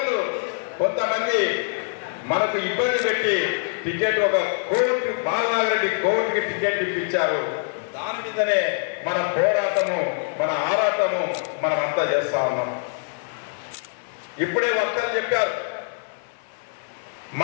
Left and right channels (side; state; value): right; silent; digital silence